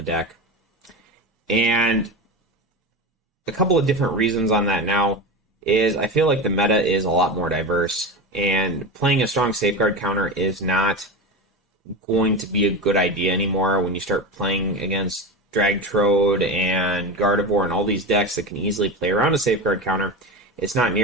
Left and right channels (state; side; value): normal; both; correlation 0.23